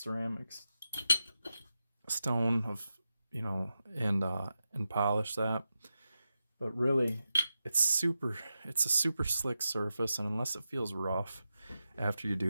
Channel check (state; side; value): inverted; both; correlation -0.90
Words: stone of, you know, and polish that. But really, it's a super slick surface, and unless it feels rough after you